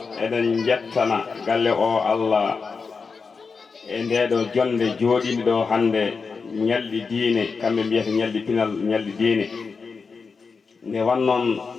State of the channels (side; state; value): right; quieter; 4.9 dB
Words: eɗen jettana galle o Allah e ndeɗo jonde jooɗinde ɗo hande ñalɗi diine kamɓe mbiyata ñalɗi pinal ñalɗi diine nde wannoon